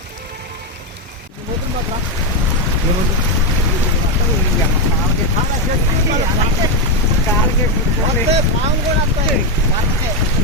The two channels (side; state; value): both; normal; correlation 0.06